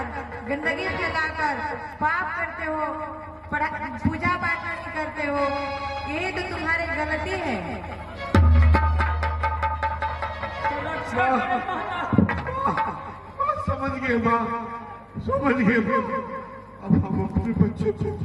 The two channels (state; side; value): identical; both; correlation 1.00